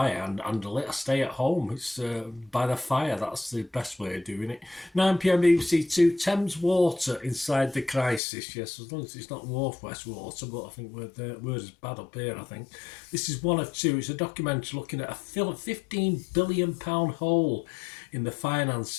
handle it. I stay at home. It's by the fire. That's the best way of doing it. 9 p.m. BBC Two. Thames Water inside the crisis. Yes, as long as it's not Northwest Water, but I think we're as bad up here, I think. This is one of two. It's a documentary looking at a £15 billion hole in the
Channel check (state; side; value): drops out; right; at 8.2 s